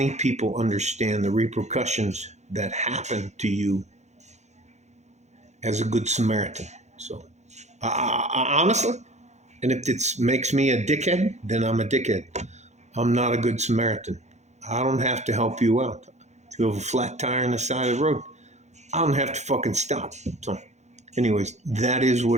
people understand the repercussions that happen to you as a good Samaritan. So, honestly, and if it makes me a dickhead, then I'm a dickhead. I'm not a good Samaritan. I don't have to help you out. If you have a flat tire on the side of the road, I don't have to fucking stop. So, anyways, that is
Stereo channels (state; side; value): late; left; 0.33 ms